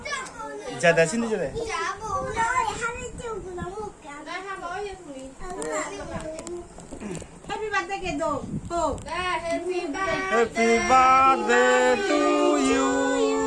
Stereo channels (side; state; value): both; identical; correlation 1.00